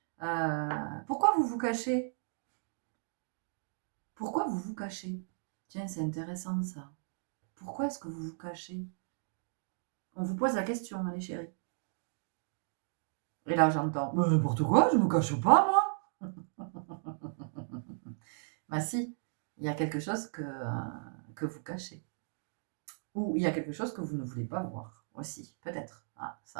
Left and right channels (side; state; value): left; silent; digital silence